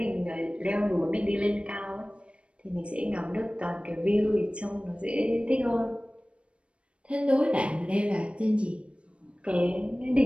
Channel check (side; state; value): left; late; 0.059 ms